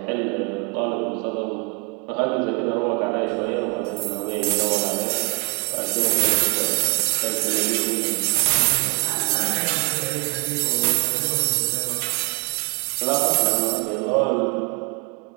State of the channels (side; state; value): left; quieter; 35.4 dB